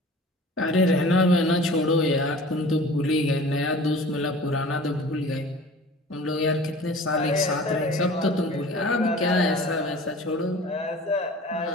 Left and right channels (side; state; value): both; normal; correlation 0.43